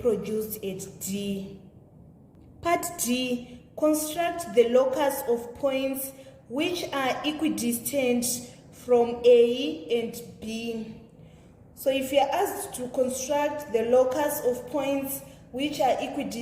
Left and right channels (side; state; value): both; identical; correlation 1.00